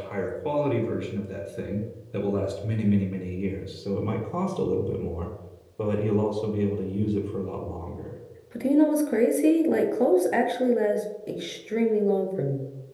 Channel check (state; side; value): identical; both; correlation 1.00